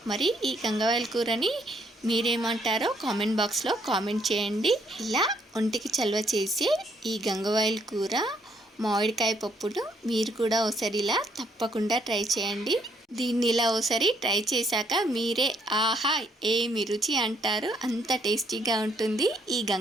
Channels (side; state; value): both; normal; correlation 0.69